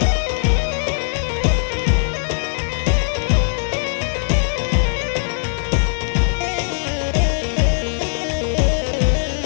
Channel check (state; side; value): silent; right; digital silence